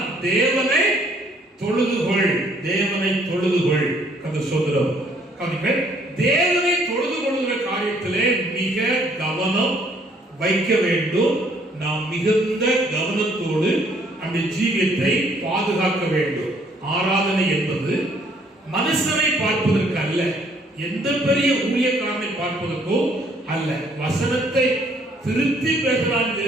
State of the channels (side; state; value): both; normal; correlation 0.64